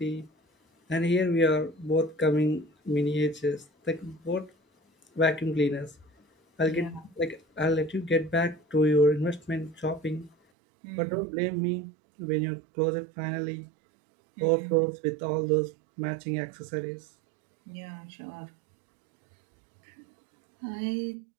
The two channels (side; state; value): left; drops out; at 10.4 s